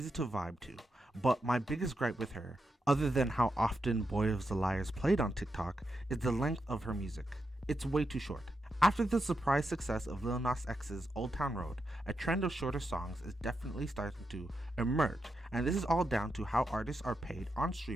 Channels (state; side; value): normal; both; correlation 0.86